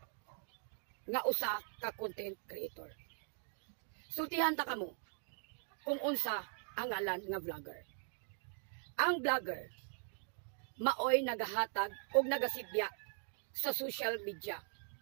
nga usa ka content creator. Sultihan ta kamo kung unsa ang ngalan nga vlogger. Ang vlogger maoy nagahatag og nagasibya sa social media.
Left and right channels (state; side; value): silent; left; 51 dB below the other